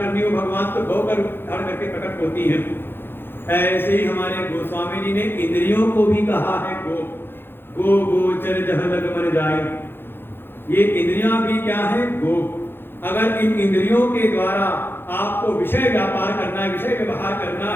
हो भगवान तो गौ का रूप धारण करके प्रकट होती है। ऐसे ही हमारे गोस्वामी जी ने इंद्रियों को भी कहा है गो। गो गोचर जहाँ लग मन जाए। ये इंद्रियां भी क्या है? गो। अगर इन इंद्रियों के द्वारा आपको विषय व्यापार करना है, विषय व्यवहार करना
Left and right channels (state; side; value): late; right; 0.10 ms